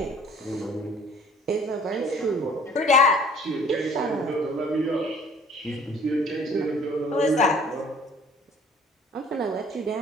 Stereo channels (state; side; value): normal; both; correlation 0.52